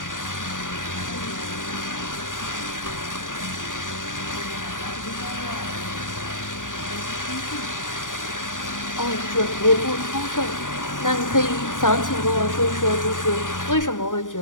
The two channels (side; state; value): right; late; 0.88 ms